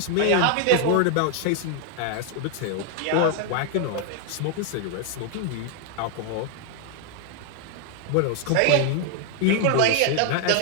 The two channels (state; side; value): different; both; correlation 0.00